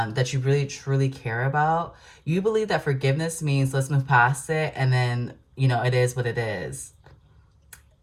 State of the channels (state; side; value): identical; both; correlation 1.00